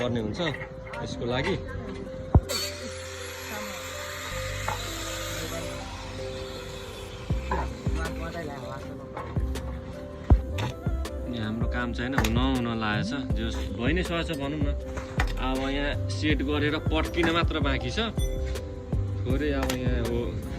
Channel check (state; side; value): identical; both; correlation 1.00